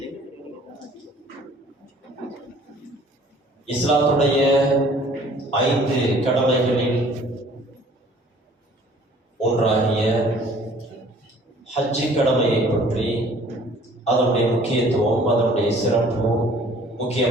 இஸ்லாத்துடைய 5 கடமைகளில் ஒன்றாகிய ஹஜ்ஜி கடமையை பற்றி, அதனுடைய முக்கியத்துவம், அதனுடைய சிறப்பு,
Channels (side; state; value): both; normal; correlation 0.53